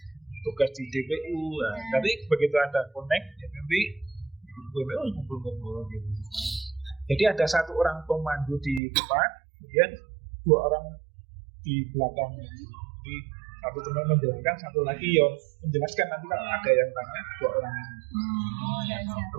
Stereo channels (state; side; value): drops out; left; at 8.8 s